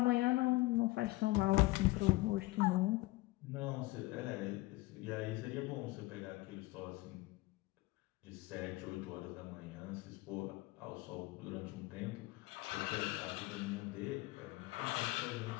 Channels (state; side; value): quieter; right; 20.4 dB